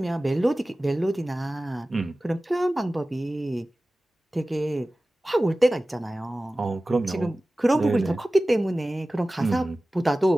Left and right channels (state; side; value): normal; both; correlation 0.97